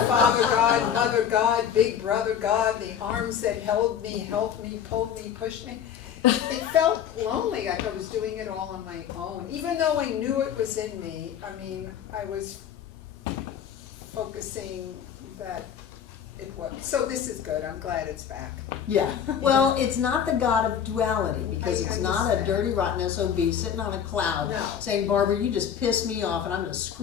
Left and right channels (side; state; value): right; quieter; 8.6 dB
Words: Father God, Mother God, Big Brother God, the arms that held me, helped me, pulled me, pushed me. It felt lonely, like I was doing it all on my own, even though I knew it was in me. I mean, I was focusing that it was. So this is good, I'm glad it's back. Yeah, well, it's not the God of duality, because I it's not a understand. dirty rotten SOB sitting on a cloud No. saying, Barbara, you just pissed me off and I'm gonna